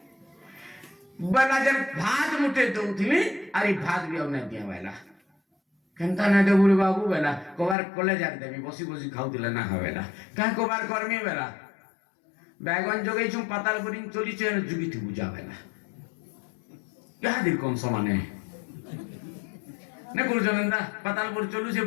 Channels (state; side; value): drops out; right; at 7.8 s